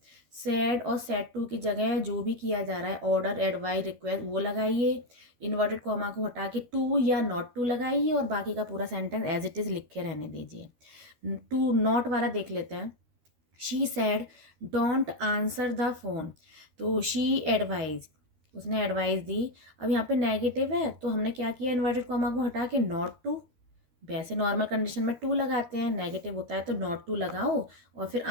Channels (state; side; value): late; left; 13 ms